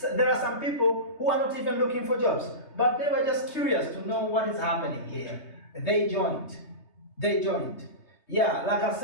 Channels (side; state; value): right; late; 3.2 ms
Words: are some people who are not even looking for jobs, but they were just curious to know what is happening here. They joined. Yeah, like I